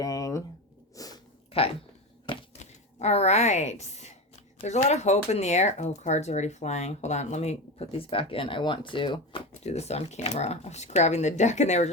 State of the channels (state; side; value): normal; both; correlation 0.22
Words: Okay. All right. There's a lot of hope in the air. Oh, cards are already flying. Hold on. Let me put these back in. I want to do this on camera. I was grabbing the deck and they were